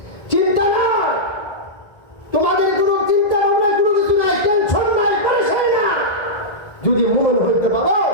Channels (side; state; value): right; late; 1.8 ms